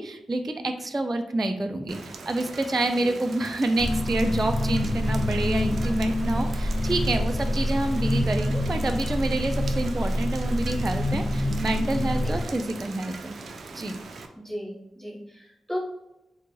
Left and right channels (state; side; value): normal; both; correlation 0.92